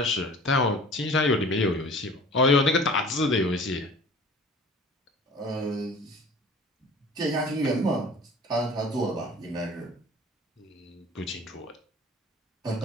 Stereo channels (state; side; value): normal; both; correlation 0.45